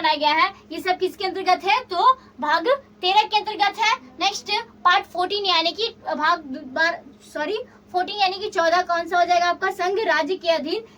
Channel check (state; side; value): identical; both; correlation 1.00